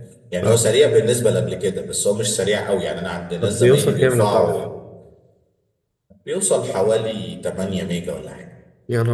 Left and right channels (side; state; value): both; identical; correlation 1.00